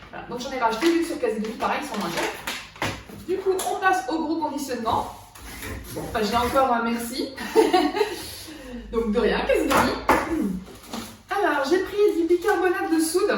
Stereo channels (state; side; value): identical; both; correlation 1.00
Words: Donc j'en ai racheté, vu que sur Casidemi pareil ils sont moins chers. Du coup on passe au gros conditionnement. Bon, bah, j'ai encore un merci. Donc de rien, Casidemi. Alors j'ai pris du bicarbonate de soude